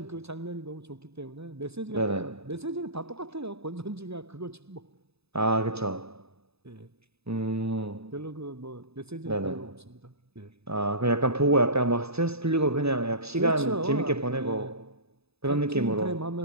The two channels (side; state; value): left; late; 0.79 ms